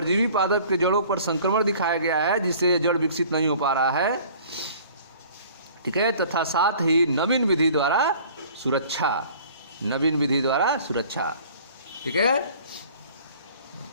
पादप के जड़ों पर संक्रमण दिखाया गया है जिससे जड़ विकसित नहीं हो पा रहा है। ठीक है, तथा साथ ही नवीन विधि द्वारा सुरक्षा, नवीन विधि द्वारा सुरक्षा। ठीक है,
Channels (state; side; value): inverted; both; correlation -0.50